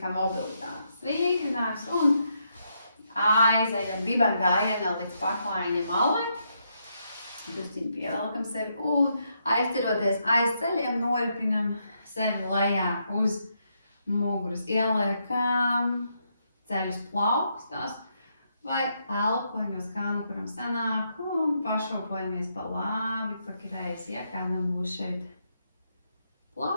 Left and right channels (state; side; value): inverted; both; correlation -0.78